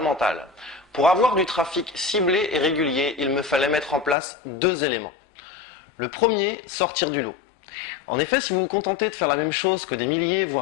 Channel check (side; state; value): right; drops out; at 4.2 s